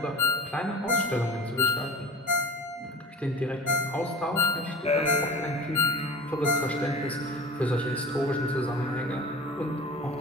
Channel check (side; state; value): both; normal; correlation 0.38